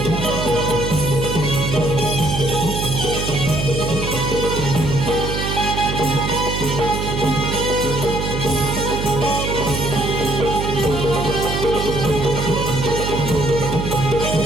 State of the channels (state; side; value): noise; right; hum, 3 dB below the sound